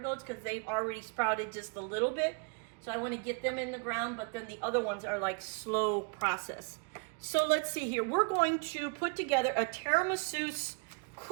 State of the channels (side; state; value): left; quieter; 35.5 dB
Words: because they've already sprouted just a little bit. So I want to get them in the ground, but then the other ones are like slow process. So let's see here. We're going to put together a tiramisu